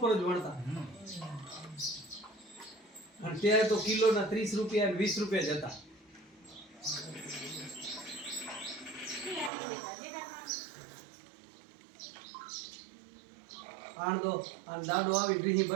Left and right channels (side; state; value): left; drops out; at 9.5 s